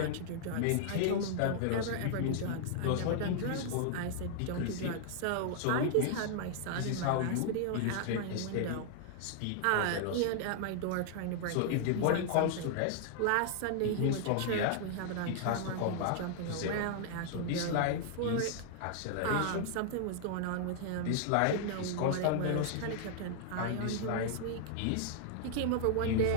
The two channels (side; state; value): both; different; correlation -0.01